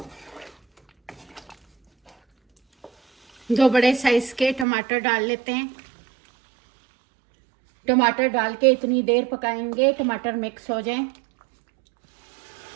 2 बड़े साइज के टमाटर डाल लेते हैं। टमाटर डाल के इतनी देर पकाएंगे टमाटर मिक्स हो जाएं।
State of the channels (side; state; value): left; drops out; at 4.7 s